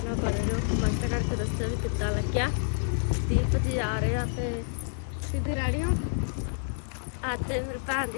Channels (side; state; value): right; silent; digital silence